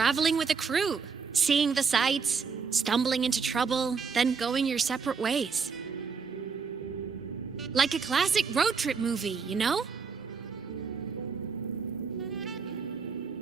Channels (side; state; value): left; quieter; 5.4 dB